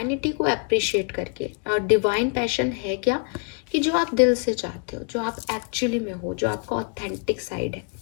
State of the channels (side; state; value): right; quieter; 38.0 dB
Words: को अप्रिशिएट करके। और डिवाइन पैशन है क्या कि जो आप दिल से चाहते हो, जो आप एक्चुअली में हो, जो आपका ऑथेंटिक साइड है।